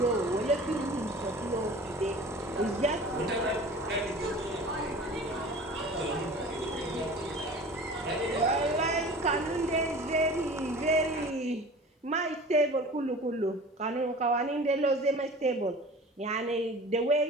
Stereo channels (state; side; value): normal; both; correlation 0.41